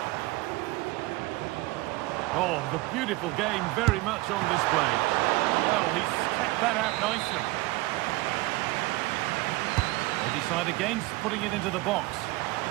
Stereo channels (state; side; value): quieter; left; 20.7 dB